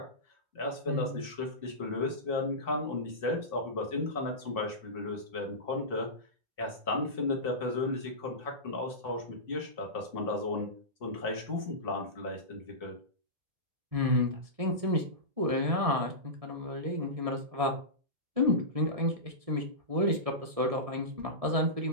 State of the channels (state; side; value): late; left; 1.7 ms